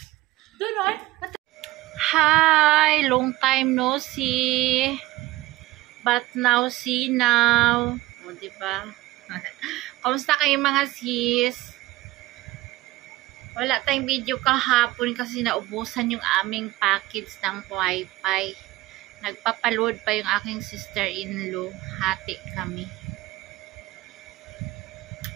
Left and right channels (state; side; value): quieter; left; 18.1 dB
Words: Doon, o. Hi! Long time no see. But now see now. O, diba? Kamusta kayo mga sis? Wala tayong video kahapon kasi naubusan yung aming package ng wifi. Nagpapaload pa yung aking sister-in-law. Hati kami.